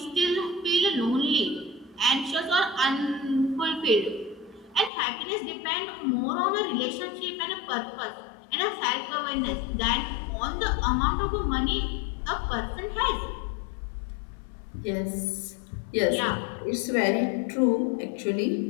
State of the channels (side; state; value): right; drops out; at 4.9 s